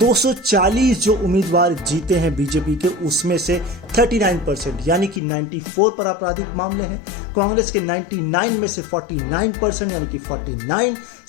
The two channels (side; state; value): right; drops out; at 5.2 s